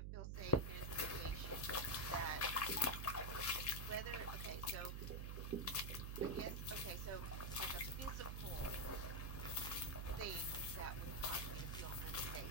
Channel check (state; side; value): noise; right; hum, 2 dB below the sound